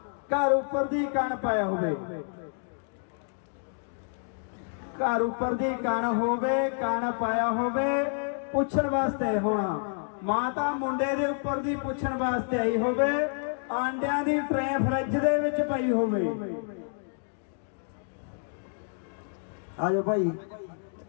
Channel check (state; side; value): silent; right; 59 dB below the other